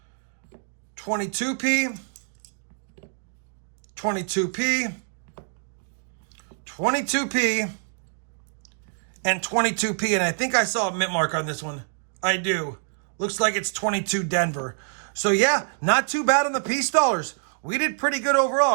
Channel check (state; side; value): silent; left; digital silence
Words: 22P. 22P. 22P. And 22P, and I think I saw a mint mark on this one. I do. Looks like it's 22 Denver. So yeah, not too bad on the piece dollars. We did pretty good overall.